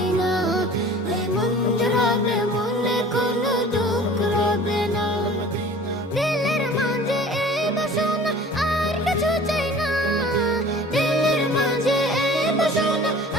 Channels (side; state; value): both; normal; correlation 0.45